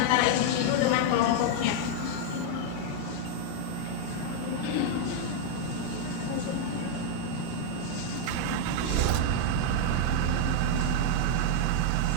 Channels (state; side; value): different; both; correlation 0.00